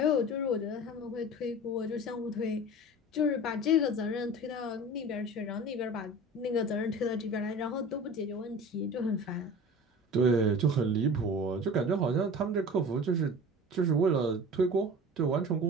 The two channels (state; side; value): normal; both; correlation 0.38